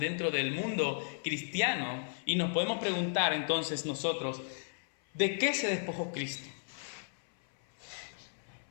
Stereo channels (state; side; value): silent; right; 55 dB below the other